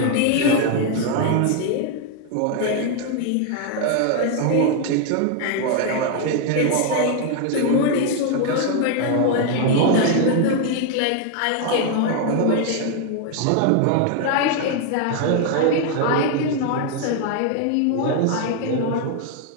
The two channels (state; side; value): different; both; correlation 0.01